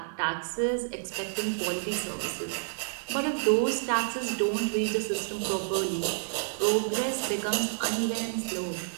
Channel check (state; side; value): silent; left; digital silence